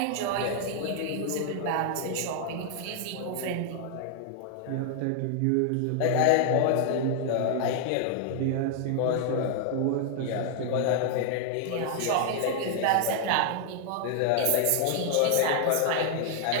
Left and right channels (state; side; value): different; both; correlation 0.00